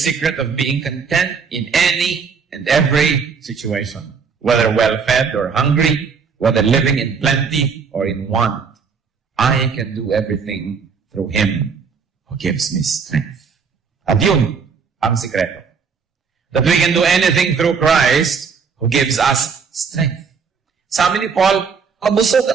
of being content in any and every situation, whether well-fed or hungry, whether living in plenty or in want. I can do everything through Him who gives me strength. At yun ang sikreto. That we can do anything through Christ who gives us strength. Sabi ni Paul, mabusog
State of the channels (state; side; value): quieter; left; 5.8 dB